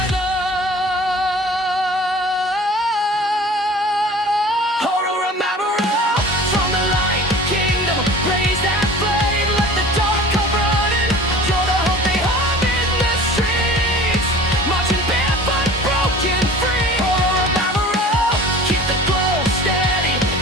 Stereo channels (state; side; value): normal; both; correlation 0.43